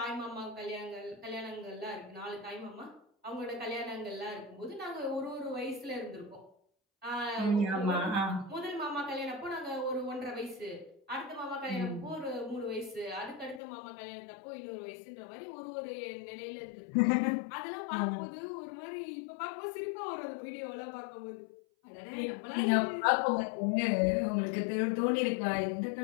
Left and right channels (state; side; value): drops out; right; at 13.6 s